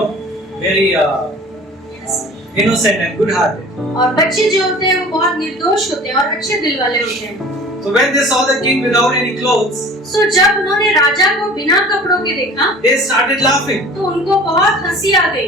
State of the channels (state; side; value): normal; both; correlation 0.43